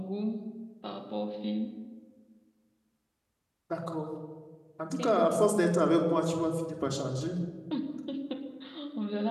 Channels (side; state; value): both; identical; correlation 1.00